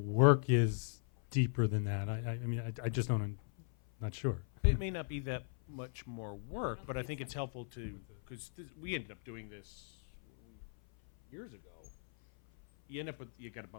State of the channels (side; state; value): right; silent; 53 dB below the other